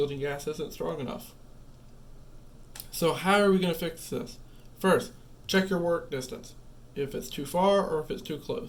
gas isn't strong enough. So how are we going to fix this? First, check your work distance, if it's too far or if it's too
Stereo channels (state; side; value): identical; both; correlation 1.00